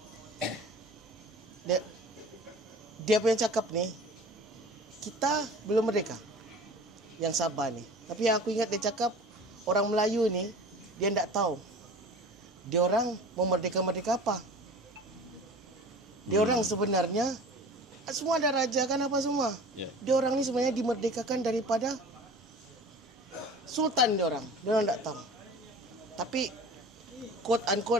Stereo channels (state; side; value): normal; both; correlation 0.40